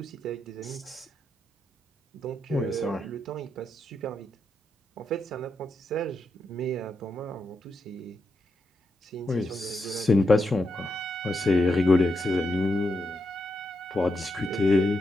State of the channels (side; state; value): both; normal; correlation 0.84